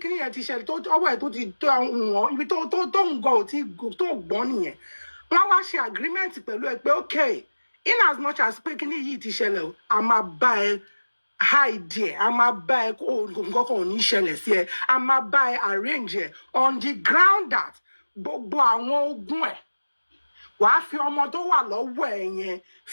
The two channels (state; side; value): inverted; both; correlation -1.00